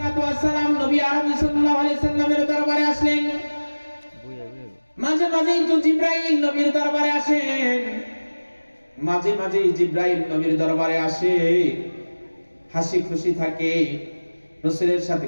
ওয়াস সালাম নবী আরবি সাল্লাল্লাহু আলাইহি সাল্লামের দরবারে আসলেন। মাঝে মাঝেই তো জিবরাইল নবীর দরবারে আসেন, মাঝে মাঝেই জিবরাইল নবীর দরবারে আসে, হাসি খুশি থাকে, রাসূলের সাথে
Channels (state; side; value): inverted; both; correlation -1.00